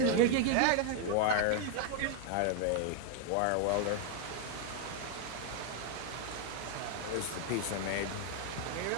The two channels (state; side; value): different; both; correlation 0.01